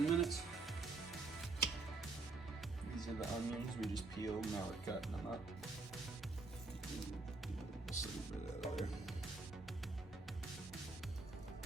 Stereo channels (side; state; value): left; quieter; 3.5 dB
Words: minutes. These are the onions we just peeled, now we're cutting them up. Just a little bit out of there.